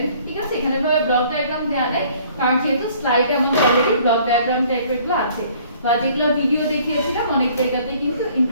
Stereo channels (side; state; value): both; inverted; correlation -0.57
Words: ঠিক আছে? এখানে ভাবে ব্লক ডায়াগ্রাম দেওয়া নেই, কারণ যেহেতু স্লাইডে আমাদের অলরেডি ব্লক ডায়াগ্রাম টাইপেরগুলো আছে, বা যেগুলো ভিডিও দেখিয়েছিলাম অনেক জায়গাতেই কিন্তু